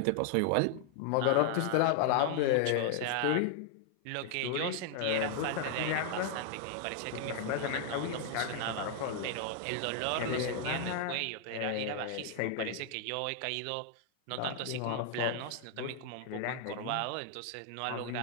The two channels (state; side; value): different; both; correlation 0.00